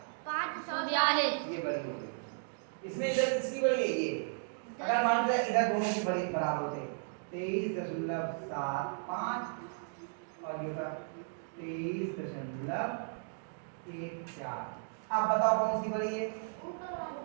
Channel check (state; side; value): silent; left; digital silence